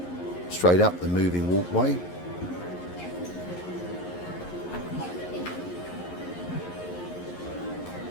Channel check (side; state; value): right; late; 11 ms